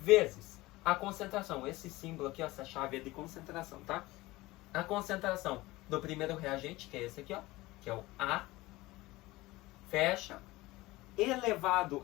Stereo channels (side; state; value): right; quieter; 19.6 dB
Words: a concentração. Esse símbolo aqui, ó, essa chave é de concentração, tá? A concentração do primeiro reagente, que é esse aqui, ó, que é o A, fecha,